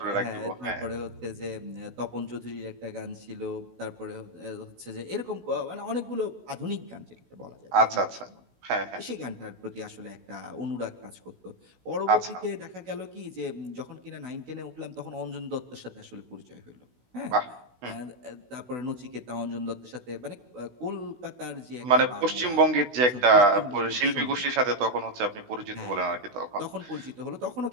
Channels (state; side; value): late; left; 16 ms